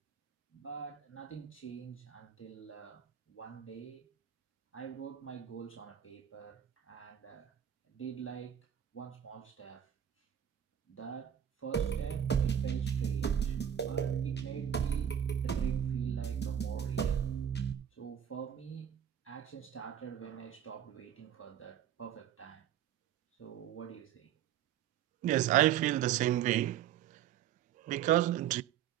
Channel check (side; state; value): left; quieter; 9.8 dB